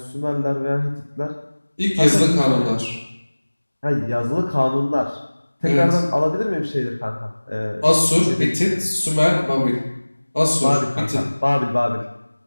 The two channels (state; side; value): inverted; both; correlation -1.00